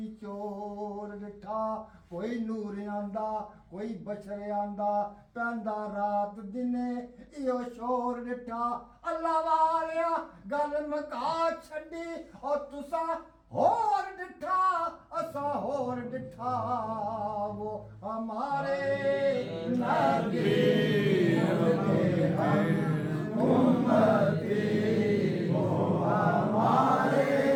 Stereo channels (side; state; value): both; identical; correlation 1.00